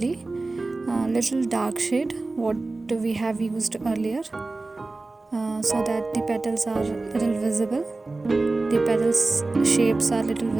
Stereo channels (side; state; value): left; quieter; 3.3 dB